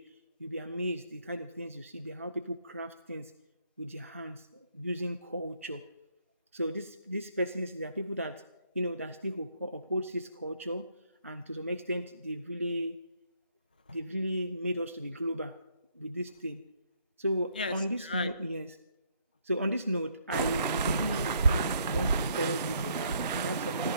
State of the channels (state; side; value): inverted; both; correlation -0.69